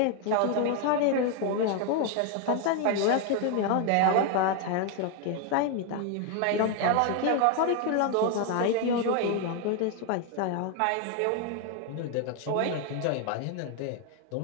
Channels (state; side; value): different; both; correlation 0.01